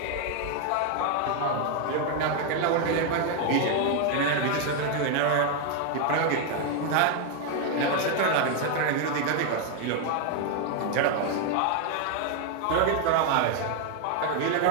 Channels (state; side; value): different; both; correlation 0.01